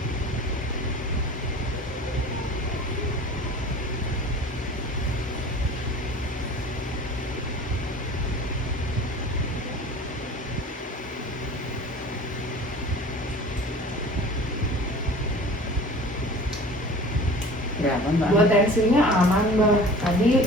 Berapa Mbak? Buat tensinya aman Mbak. Tadi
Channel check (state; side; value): normal; both; correlation 0.42